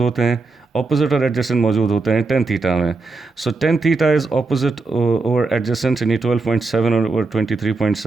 होते हैं, ऑपोजिट और एडजेसेंट मौजूद होते हैं tan थीटा में। So tan theta is opposite over adjacent, यानी 12.7 over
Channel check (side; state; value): left; quieter; 3.7 dB